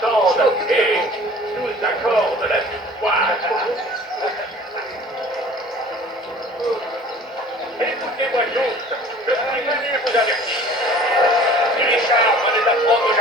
et nous accorde la victoire. Écoutez-moi tous, je suis venu vous avertir. Si Richard venait d'apprendre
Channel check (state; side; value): normal; both; correlation 0.47